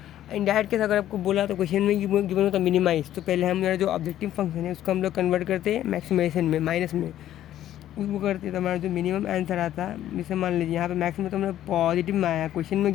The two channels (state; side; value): quieter; right; 12.3 dB